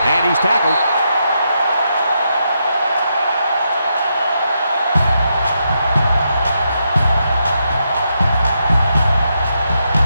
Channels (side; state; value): both; inverted; correlation -0.82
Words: And he's tackled.